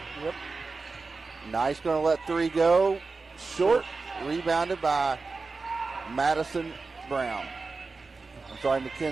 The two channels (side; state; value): left; quieter; 4.1 dB